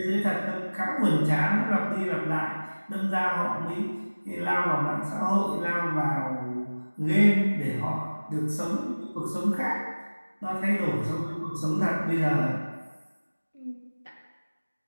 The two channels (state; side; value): inverted; both; correlation -1.00